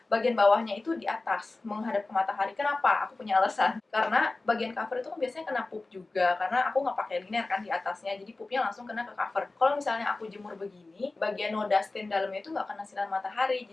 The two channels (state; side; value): quieter; right; 3.3 dB